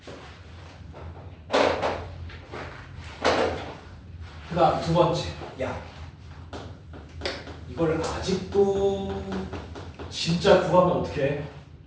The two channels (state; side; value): identical; both; correlation 1.00